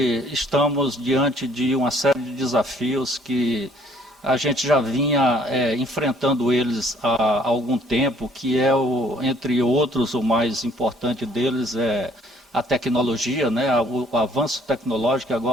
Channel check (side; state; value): both; normal; correlation 0.61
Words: estamos diante de uma série de desafios que a gente já vinha enfrentando eles há algum tempo, que entre outros, o mais importante deles é a tecnologia, né? O avanço tecnológico,